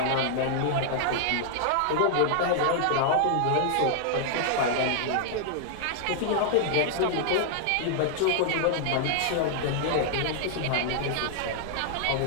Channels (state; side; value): different; both; correlation -0.01